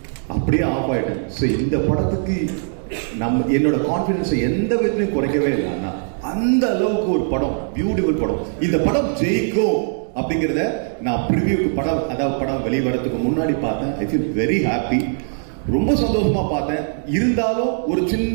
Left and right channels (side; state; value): left; silent; 65 dB below the other